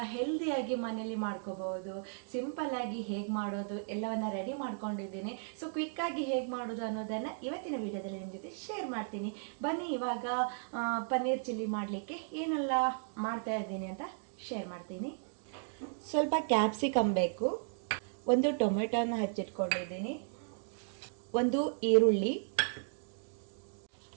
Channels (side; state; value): left; silent; digital silence